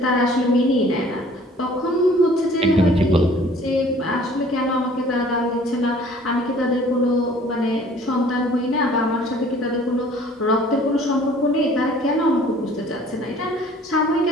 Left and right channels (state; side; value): normal; both; correlation 0.53